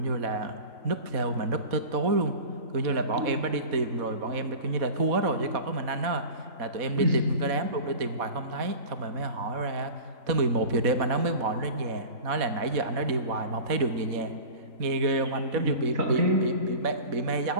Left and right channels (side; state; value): left; late; 4.1 ms